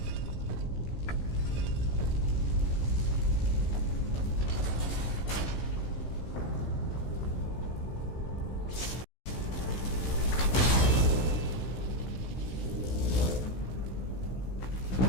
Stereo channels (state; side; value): late; right; 16 ms